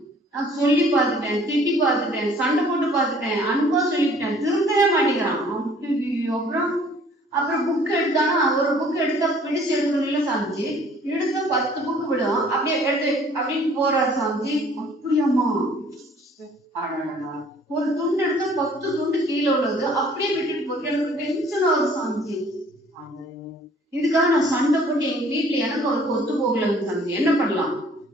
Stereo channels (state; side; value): normal; both; correlation 0.56